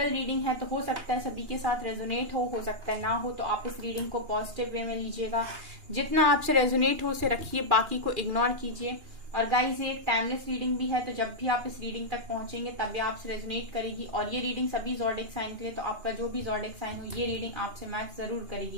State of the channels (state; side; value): late; left; 2.8 ms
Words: रीडिंग है तो हो सकता है सभी के साथ रेजोनेट हो सकता है ना हो, तो आप इस रीडिंग को पॉजिटिव वे में लीजिएगा। जितना आपसे रेजोनेट हो उसे रखिए, बाकी को इग्नोर कीजिए। और गाइस, ये एक टाइमलेस रीडिंग भी है, तो जब भी आप इस रीडिंग तक पहुंचेंगे तब भी आपसे रेजोनेट करेगी। और ये रीडिंग सभी ज़ोडिएक साइन के लिए, तो आपका जो भी ज़ोडिएक साइन हो ये रीडिंग आपसे मैच जरूर